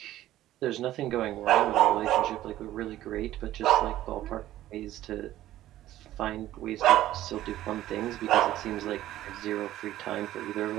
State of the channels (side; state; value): left; quieter; 14.0 dB